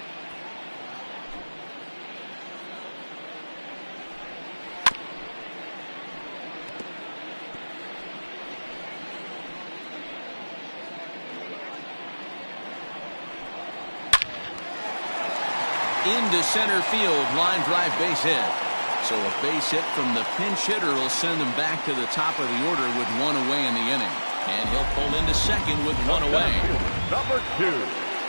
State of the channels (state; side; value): inverted; both; correlation -1.00